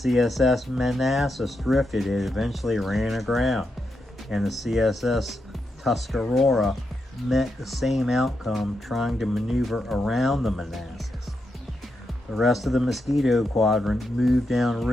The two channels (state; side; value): normal; both; correlation 0.84